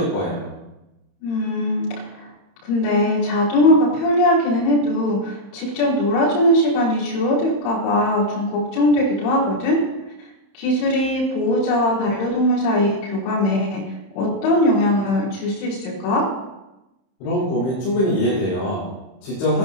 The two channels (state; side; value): late; right; 31 ms